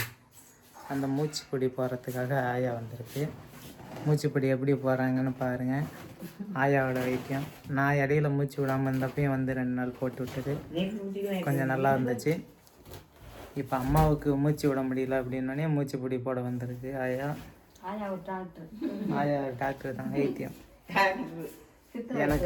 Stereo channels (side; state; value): both; identical; correlation 1.00